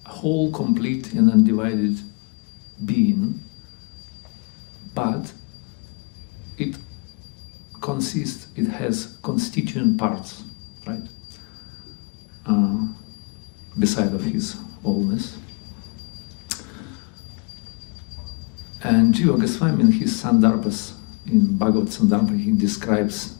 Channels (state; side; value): quieter; right; 32.4 dB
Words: a whole, complete and undivided being, but it has constituent parts, right? Beside of his wholeness. And Jiva Goswami in his Sandarbhas, in Bhagavad Sandarbha, he describes